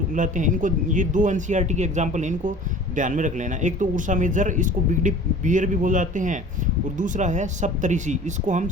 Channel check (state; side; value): normal; both; correlation 0.43